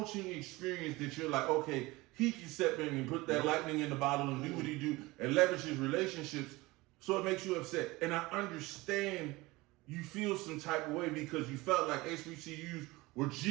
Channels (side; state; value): left; quieter; 21.4 dB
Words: experience that you're like, okay, he can step in and put that lightning in the bottle and do what he do and leverage his relationships, so it makes you upset. And I understand you feel some type of way because you felt like HBCUs were